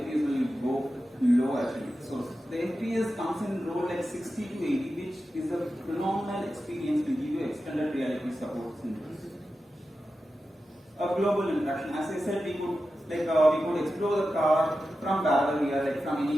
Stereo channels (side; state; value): both; normal; correlation 0.92